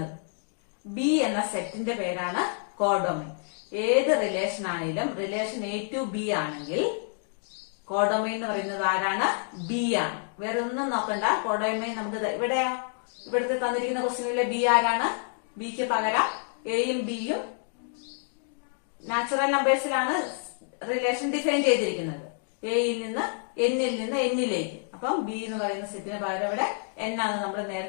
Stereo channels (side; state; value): right; silent; 56 dB below the other